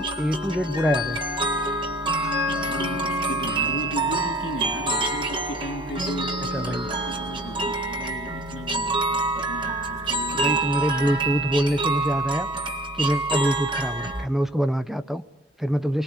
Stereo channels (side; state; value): both; normal; correlation 0.51